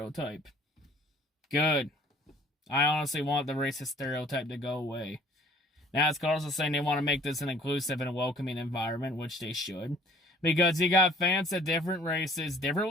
Good. I honestly want the racist stereotype to go away. NASCAR also saying they want to make this an inclusive and a welcoming environment, which they should. Because you got fans of different races,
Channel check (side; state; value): both; normal; correlation 0.55